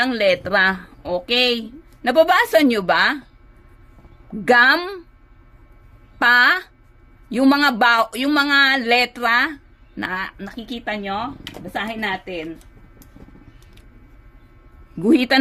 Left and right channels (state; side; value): identical; both; correlation 1.00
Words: letra. Okay. Nababasa nyo ba? Gum, pa, yung mga letra na nakikita nyo. Basahin natin.